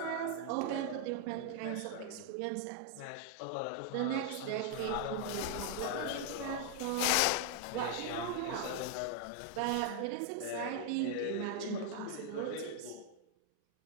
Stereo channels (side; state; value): both; different; correlation 0.00